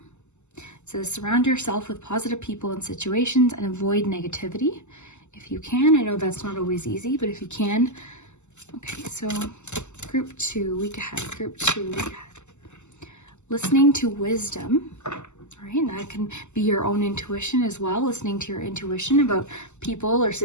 It says surround yourself with positive people and situations and avoid negativity if you can. I know that's not always easy, but if you can. Okay, so group two, week ahead. Group two, week ahead. Listening to wisdom. All right, and that can be your own intuition as well. Listening to your intuition about people or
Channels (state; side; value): late; right; 0.83 ms